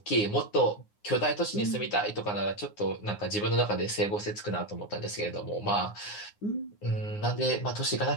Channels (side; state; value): right; late; 9.7 ms